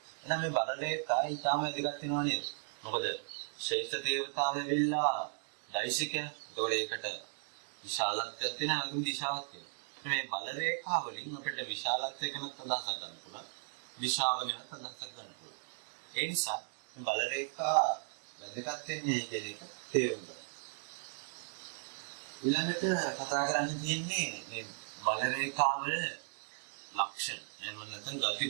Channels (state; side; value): silent; left; 54 dB below the other